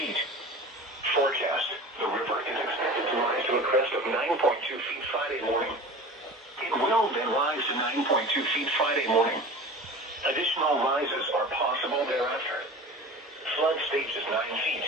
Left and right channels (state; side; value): normal; both; correlation 0.36